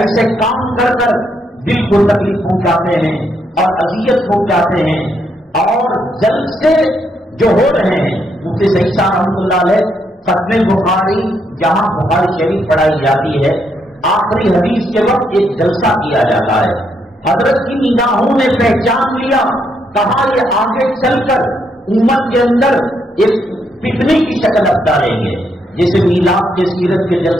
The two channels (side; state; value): both; normal; correlation 0.76